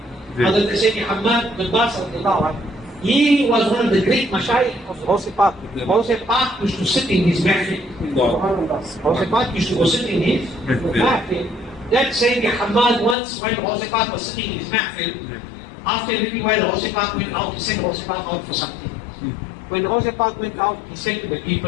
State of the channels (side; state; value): right; drops out; at 13.2 s